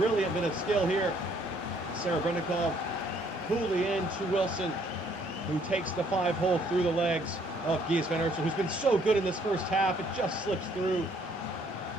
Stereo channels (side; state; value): both; normal; correlation 0.65